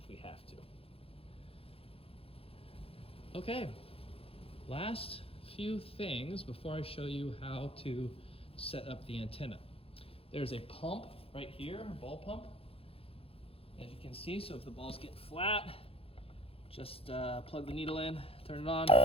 we have to. Okay, last few things before I show you how to set up the antenna. There's a pump right here, a ball pump, as you can see. So if the balls get flat, just plug the needle in, turn it on,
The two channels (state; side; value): late; right; 0.27 ms